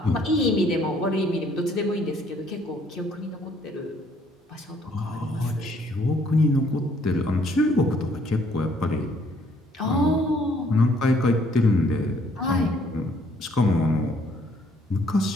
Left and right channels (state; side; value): normal; both; correlation 0.64